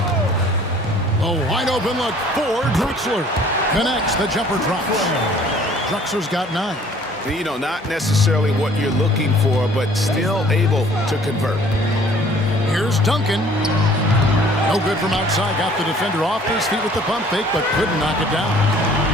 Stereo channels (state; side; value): normal; both; correlation 0.55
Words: A wide open look for Drexler. Connects, the jumper drops. Drexler's got 9. You know, not necessarily what you're looking for, but still able to convert. Here's Duncan. No good from outside. Got the defender off his feet with the pump fake, but couldn't knock it down.